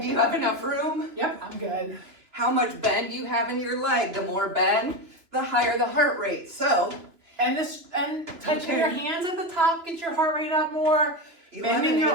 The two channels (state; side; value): late; left; 3.0 ms